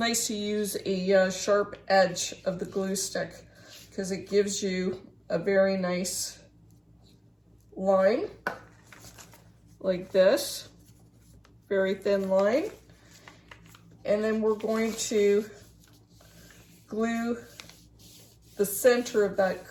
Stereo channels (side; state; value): both; identical; correlation 1.00